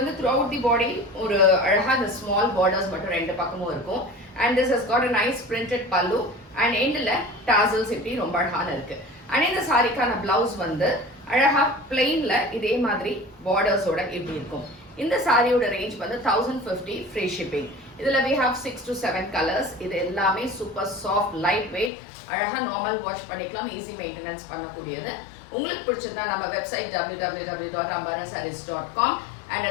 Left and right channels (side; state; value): right; drops out; at 21.9 s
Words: த்ரூ அவுட் தி பாடி ஒரு அழகாக இந்த ஸ்மால் பார்டர்ஸ் மட்டும் ரெண்டு பக்கமும் இருக்கும். And this has got a nice printed பல்லு அண்ட் எண்டில் டாசல்ஸ் இப்படி ரொம்ப அழகான இருக்கு. அண்ட் இந்த சாரிக்கான பிளவுஸ் வந்து அழகா பிளெயின்ல இதே மாதிரி பார்டர்ஸோட இப்படி இருக்கும். இந்த சாரியோட ரேஞ்ச் வந்து 1050 ஃப்ரீ ஷிப்பிங். இதுல we have 6 to 7 கலர்ஸ். இது எல்லாமே சூப்பர் சாஃப்ட் லைட் வெயிட், அழகா நார்மல் வாஷ் பண்ணிக்கலாம், ஈஸி மெயின்டெனன்ஸ் பண்ணக்கூடியது. உங்களுக்கு பிடிச்சிருந்தா நம்ம website www.ambarasarees.com and